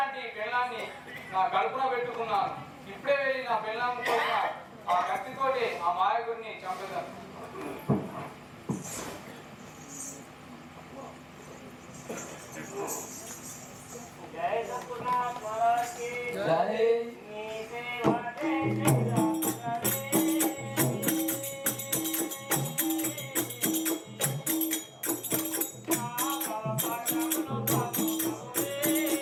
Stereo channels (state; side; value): identical; both; correlation 1.00